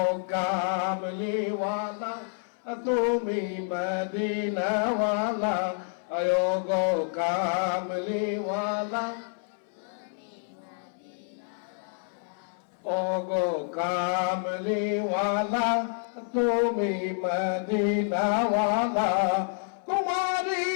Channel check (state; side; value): silent; right; 59 dB below the other